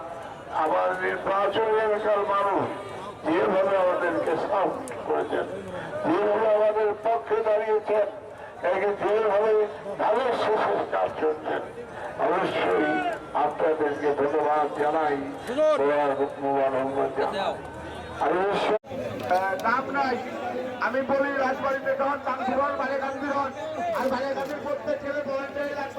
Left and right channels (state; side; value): identical; both; correlation 1.00